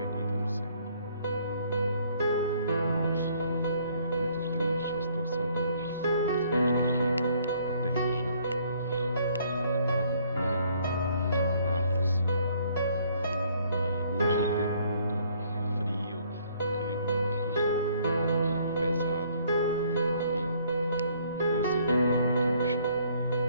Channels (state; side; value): inverted; both; correlation -0.63